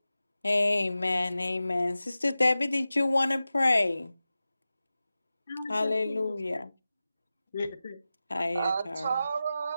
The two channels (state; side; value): inverted; both; correlation -0.95